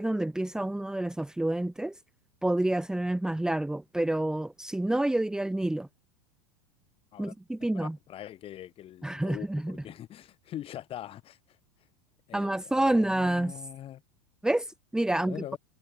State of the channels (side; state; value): both; normal; correlation 0.97